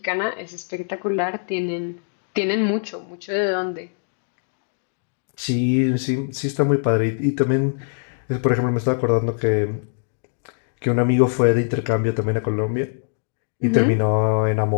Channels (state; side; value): silent; right; digital silence